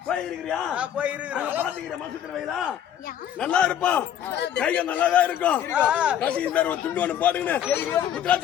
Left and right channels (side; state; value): right; quieter; 10.2 dB